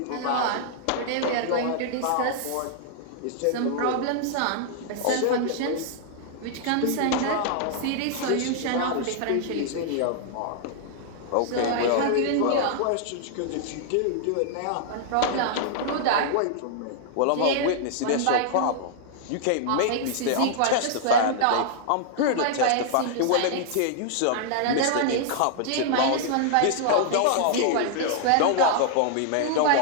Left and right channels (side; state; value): both; different; correlation -0.01